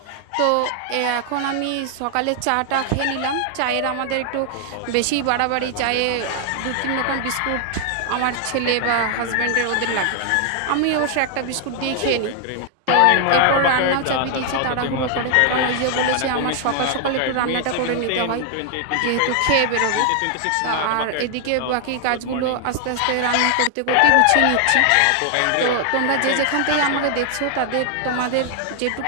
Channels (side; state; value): both; different; correlation 0.00